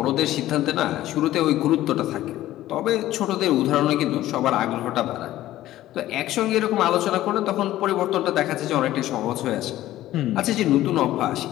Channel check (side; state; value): right; quieter; 14.6 dB